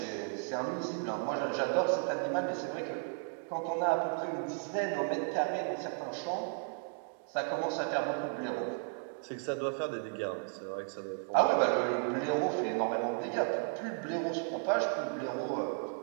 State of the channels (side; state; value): left; silent; 55 dB below the other